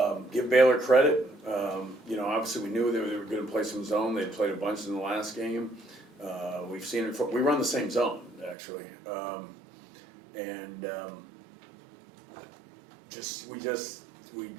give Baylor credit. Obviously we knew they were going to play some zone. They played a bunch in the last game. We've seen it. We run the same zone actually, we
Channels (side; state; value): left; drops out; at 8.6 s